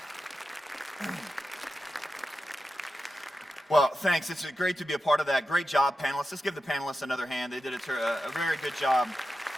Well, thanks. It's great to be a part of that. Great job, panelists. Let's give the panelists another hand. They did a very good job.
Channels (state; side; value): normal; both; correlation 0.90